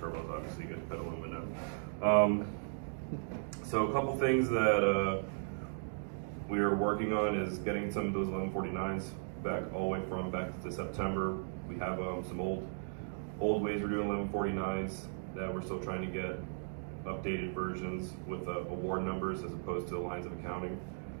obviously you get to put aluminum. So a couple things that we are working on is getting some of those 1149s back all the way back to September. We have some old ways we're doing 1149s that we're still trying to get updated versions with award numbers as opposed to lines of accounting.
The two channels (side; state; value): left; silent; digital silence